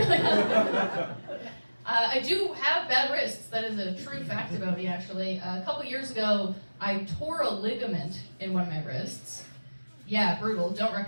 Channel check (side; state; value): both; inverted; correlation -1.00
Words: I do have bad wrists. That is a true fact about me, actually. A couple years ago, I tore a ligament in one of my wrists. Yeah, brutal. Don't